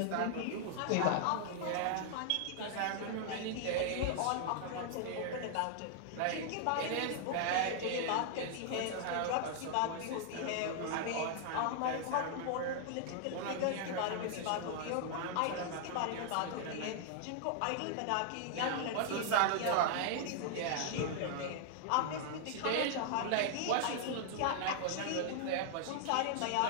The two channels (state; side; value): different; both; correlation -0.01